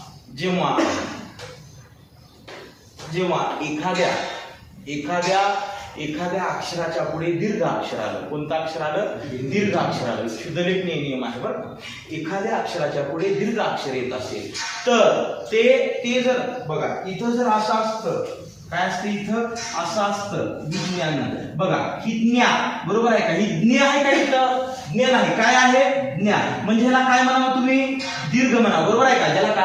एखाद्या अक्षराच्या पुढे दीर्घ अक्षर आलं, कोणतं अक्षर आलं, दीर्घ अक्षर आलं, शुद्धलेखनीय नियम आहे बरं. एखाद्या अक्षराच्या पुढे दीर्घ अक्षर येत असेल तर ते जर बघा इथं जर असं असतं, काय असतं इथं असं असतं, विज्ञान, बघा ही ज्ञा, बरोबर आहे का, ही ज्ञ आहे का इथं, ज्ञ नाही. काय आहे? ज्ञान. म्हणजे ह्याला काय म्हणावं तुम्ही? दीर्घ म्हणा. बरोबर आहे का? ज्याला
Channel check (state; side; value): identical; both; correlation 1.00